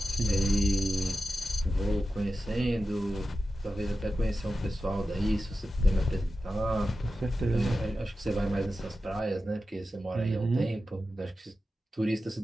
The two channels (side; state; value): both; normal; correlation 0.93